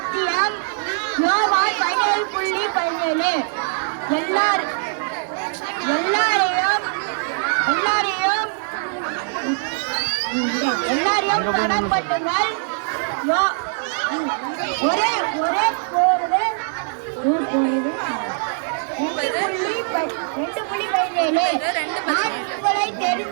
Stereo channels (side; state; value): left; silent; 61 dB below the other